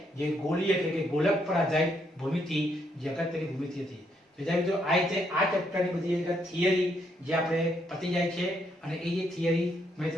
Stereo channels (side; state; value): both; normal; correlation 0.74